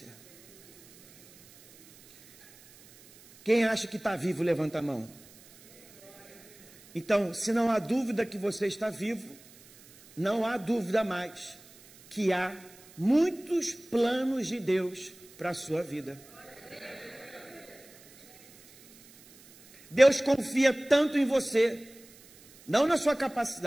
Quem acha que está vivo, levanta a mão. Então, se não há dúvida que você está vivo, não há dúvida mais que há muitos planos de Deus para a sua vida. Deus confia tanto em você, não na sua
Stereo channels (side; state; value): right; noise; hiss, 24 dB below the sound